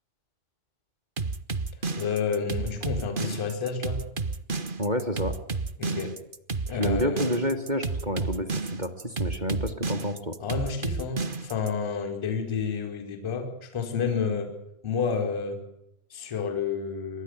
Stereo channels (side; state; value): left; late; 2.5 ms